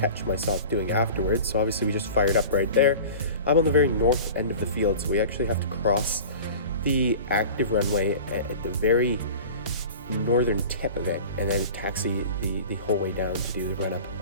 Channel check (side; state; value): both; inverted; correlation -0.38